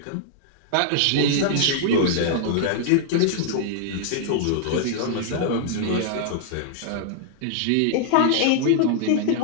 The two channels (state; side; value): different; both; correlation -0.01